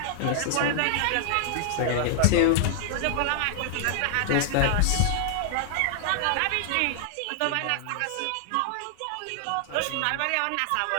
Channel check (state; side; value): different; both; correlation 0.00